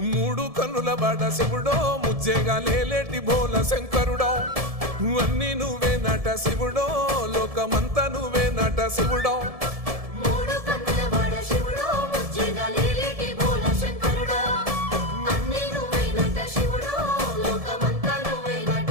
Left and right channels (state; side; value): late; left; 1.7 ms